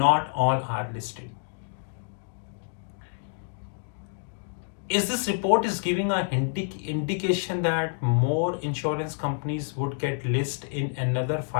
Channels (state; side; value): silent; right; digital silence